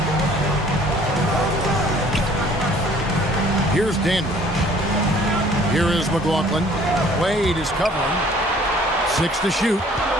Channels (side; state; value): both; normal; correlation 0.55